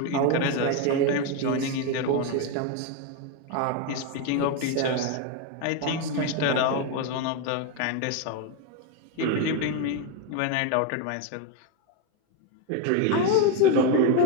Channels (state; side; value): different; both; correlation 0.02